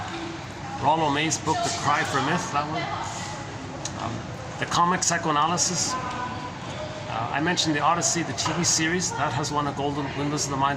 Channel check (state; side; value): identical; both; correlation 1.00